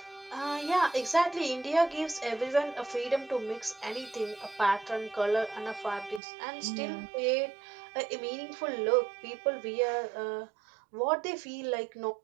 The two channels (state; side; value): drops out; left; at 6.2 s